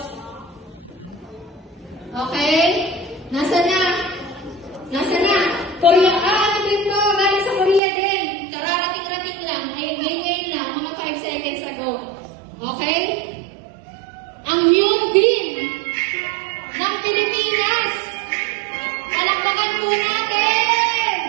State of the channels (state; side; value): drops out; left; at 7.8 s